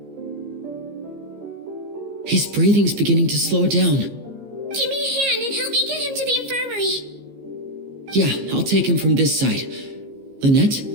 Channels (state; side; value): late; left; 15 ms